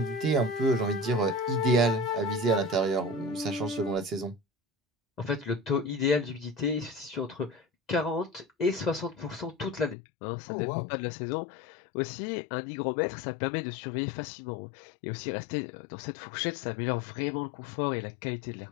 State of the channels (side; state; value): right; drops out; at 10.0 s